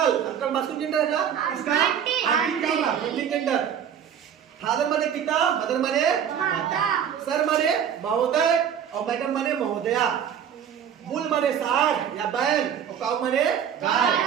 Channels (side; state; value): left; quieter; 8.6 dB